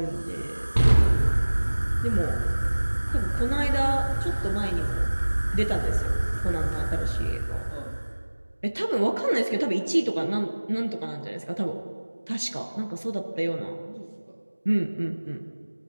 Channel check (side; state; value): both; inverted; correlation -1.00